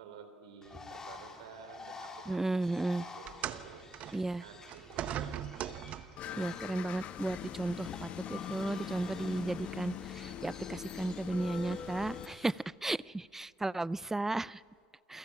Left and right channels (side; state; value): both; normal; correlation 0.87